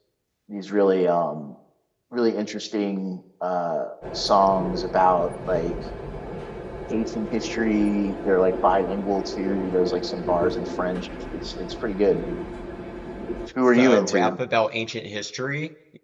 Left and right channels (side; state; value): both; identical; correlation 1.00